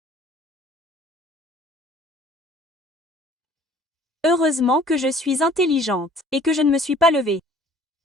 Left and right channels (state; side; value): normal; both; correlation 0.53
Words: Heureusement que je suis intelligente, et que je ne me suis pas levée.